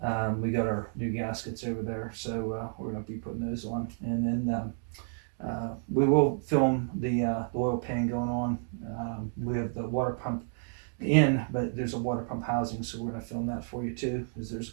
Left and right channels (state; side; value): silent; left; digital silence